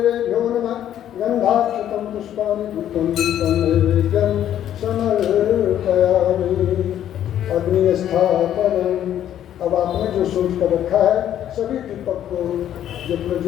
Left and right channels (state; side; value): quieter; right; 10.9 dB